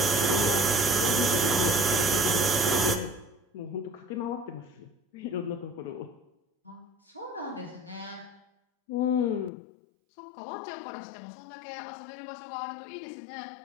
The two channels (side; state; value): right; drops out; at 9.5 s